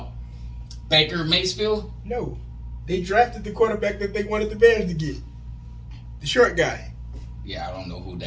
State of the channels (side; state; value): both; identical; correlation 1.00